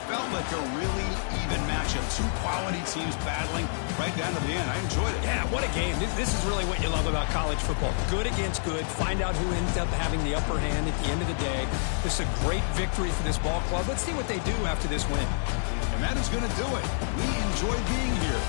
felt like a really even matchup. 2 quality teams battling right down to the end. I enjoyed it. Yeah, what a game. This is really what you love about college football. Good against good. Find out who ends up having the upper hand at the end of the day. This is a great victory for this ball club. Let's see what they do after this win. And that is going to do it. We enjoyed being here.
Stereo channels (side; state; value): right; silent; 59 dB below the other